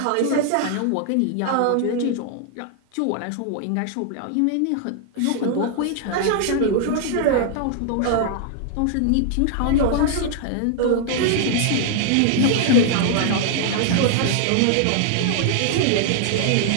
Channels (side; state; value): both; different; correlation 0.00